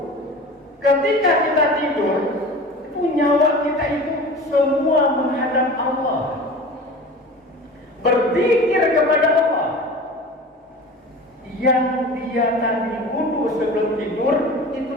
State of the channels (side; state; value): both; normal; correlation 0.36